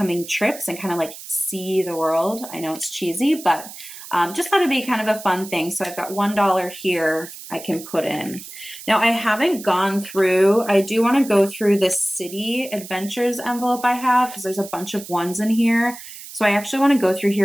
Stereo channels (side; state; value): right; noise; hiss, 14 dB below the sound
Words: trips and kind of like see the world. I know it's cheesy, but just thought it'd be kind of a fun thing. So I've got $1 here I can put in. Now I haven't gone through, I do want to go through this city adventures envelope I have because there's a bunch of ones in here. So I actually want to go through